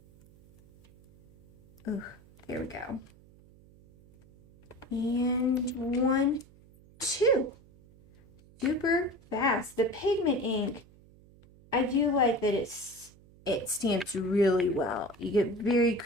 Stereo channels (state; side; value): noise; right; hum, 26 dB below the sound